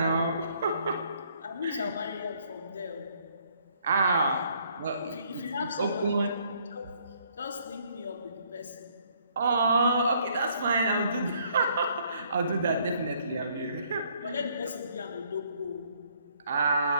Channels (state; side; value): inverted; both; correlation -0.66